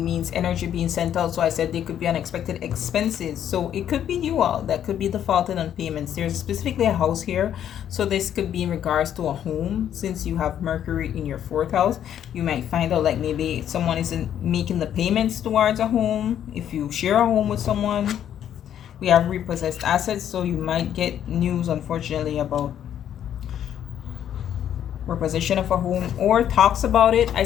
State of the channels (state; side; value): quieter; right; 10.0 dB